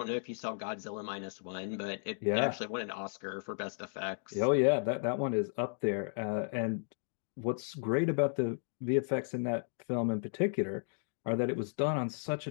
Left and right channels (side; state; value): right; silent; digital silence